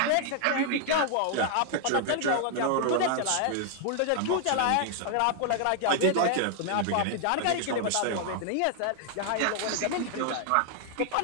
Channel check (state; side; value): different; both; correlation 0.00